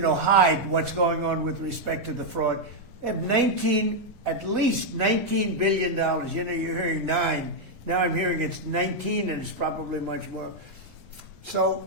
what's going on with respect to the fraud. They have at least $19 billion. You're hearing 9. Now I'm hearing it's 19, and it's probably much more. So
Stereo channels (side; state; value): both; normal; correlation -0.02